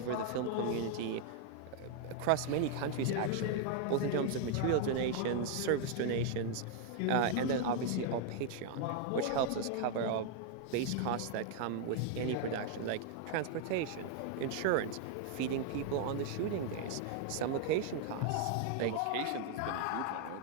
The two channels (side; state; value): both; different; correlation 0.00